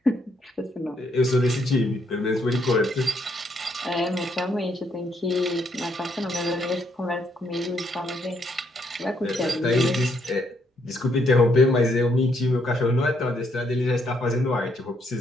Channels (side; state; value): both; normal; correlation 0.73